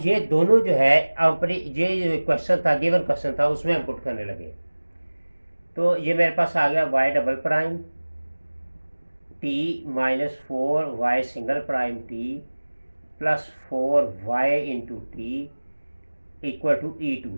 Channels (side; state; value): both; inverted; correlation -1.00